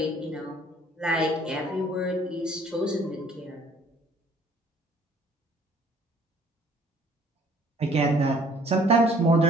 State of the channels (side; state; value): both; normal; correlation 0.57